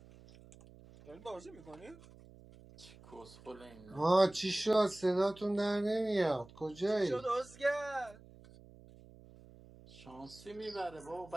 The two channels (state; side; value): noise; right; hum, 21 dB below the sound